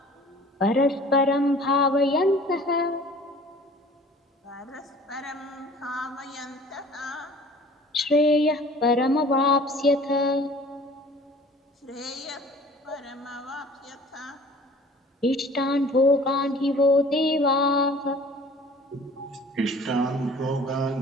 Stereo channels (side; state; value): both; normal; correlation 0.48